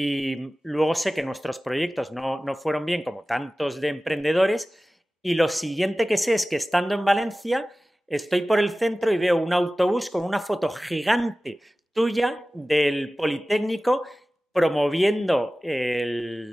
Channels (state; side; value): normal; both; correlation 0.97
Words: luego sé que nuestros proyectos no fueron bien como tantos de emprendedores y lo siguiente que sé es que estando en Valencia estoy por el centro y veo un autobús con una foto gigante tuya del Politécnico promoviendo